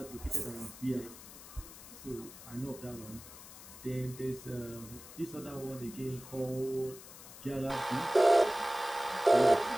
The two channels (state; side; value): noise; left; hiss, 16 dB below the sound